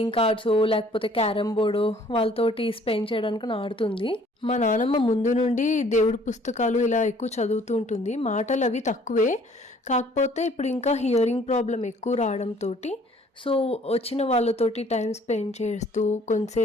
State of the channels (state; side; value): normal; both; correlation 0.57